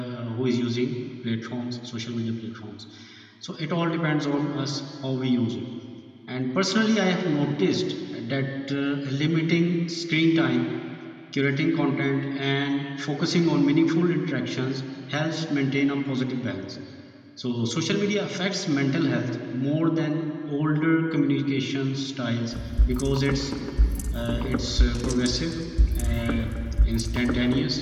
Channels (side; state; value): both; identical; correlation 1.00